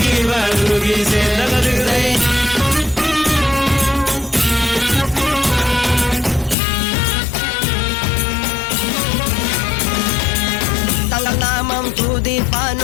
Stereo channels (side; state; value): right; drops out; at 6.6 s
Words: വാറുകീച്ച ദഗദിഗതൈ തങ്ങൾ നാമം